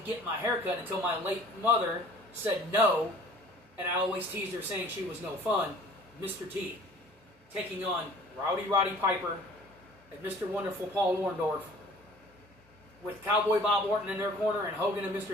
get my hair cut until my late mother said no, and I always teased her saying she was no fun. Mr. T, taking on Roddy Piper and Mr. Wonderful Paul Orndorff, with Cowboy Bob Orton in their corner and Hogan and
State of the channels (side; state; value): both; normal; correlation 0.49